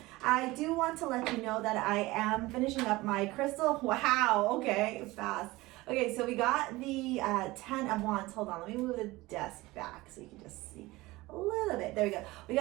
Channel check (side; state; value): left; quieter; 20.1 dB